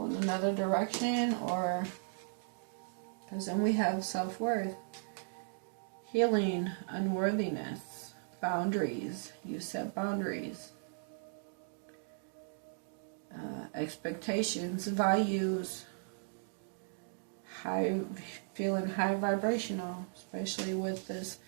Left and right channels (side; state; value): left; silent; digital silence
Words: in another direction. Or because then we have self-worth, healing, unworthiness, boundaries. You set boundaries, expectations, values, feeling high vibrational, especially with this